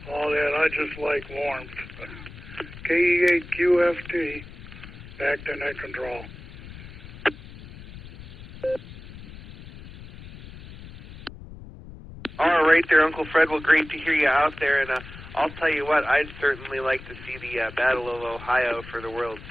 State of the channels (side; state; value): left; noise; rumble, 15 dB below the sound